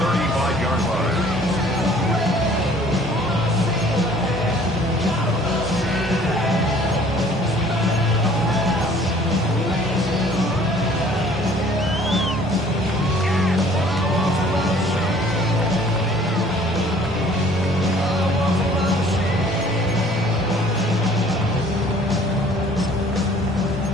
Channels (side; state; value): both; normal; correlation 0.54